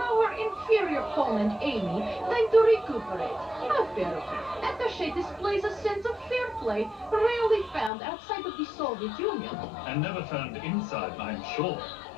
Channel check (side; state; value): right; drops out; at 7.9 s